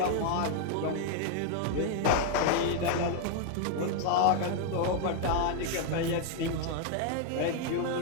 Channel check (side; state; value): both; different; correlation 0.00